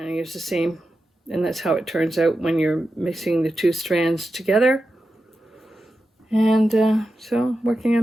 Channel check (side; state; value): both; normal; correlation 0.91